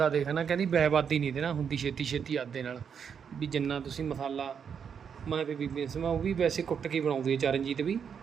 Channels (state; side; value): quieter; left; 7.2 dB